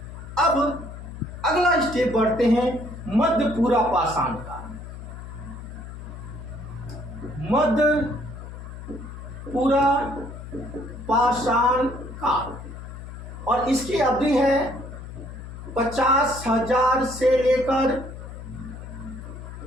अब अगला स्टेप बढ़ते हैं, मध्य पूरा पाषाण काल। मध्य पूरा पाषाण काल, और इसकी अवधि है 50,000 से लेकर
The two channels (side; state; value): left; noise; hum, 11 dB below the sound